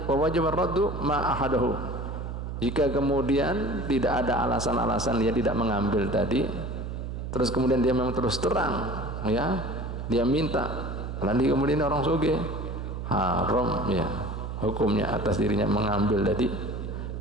wa wajib ar-raddu ma ahadahu. Jika kemudian tidak ada alasan-alasan dia tidak mengambil tadi, terus kemudian dia memang terus terang, ya, dia minta, lalu kemudian orang sugih, haram ya hukumnya atas dirinya mengambil tadi,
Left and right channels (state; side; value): noise; right; hum, 6 dB below the sound